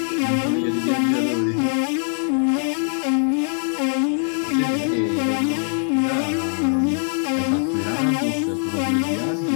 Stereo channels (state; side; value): silent; right; 64 dB below the other